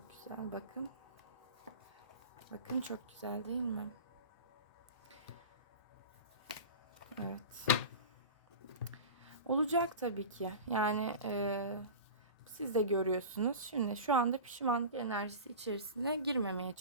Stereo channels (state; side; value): inverted; both; correlation -0.32